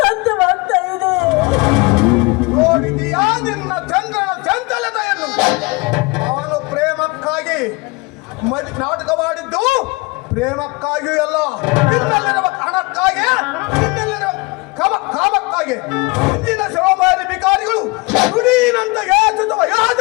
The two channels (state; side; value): quieter; right; 26.1 dB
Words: ಇದೆ. ನೋಡಿದೀಯಾ ನಿನ್ನ ಚಂದ್ರನ ಚಂಚಲತೆಯನ್ನು? ಅವನು ಪ್ರೇಮಕ್ಕಾಗಿ ನಾಟಕವಾಡಿದ್ದು ಪ್ರೇಮಕ್ಕಾಗಿಯೂ ಅಲ್ಲ, ನಿನ್ನಲ್ಲಿರುವ ಹಣಕ್ಕಾಗಿ, ನಿನ್ನಲ್ಲಿರುವ ಕಾಮಕ್ಕಾಗಿ. ಇಂದಿನ ಶಿವಮಾರಿ ಬಿಕಾರಿಗಳು ನುಡಿನಂತ ಯಾಚಿಸುವ